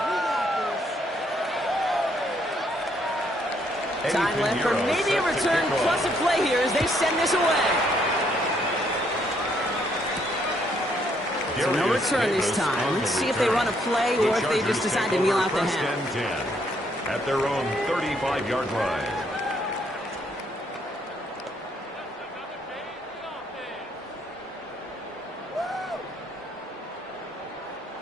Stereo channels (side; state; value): both; normal; correlation 0.70